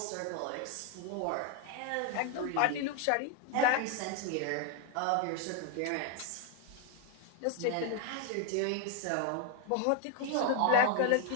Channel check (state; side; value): different; both; correlation 0.00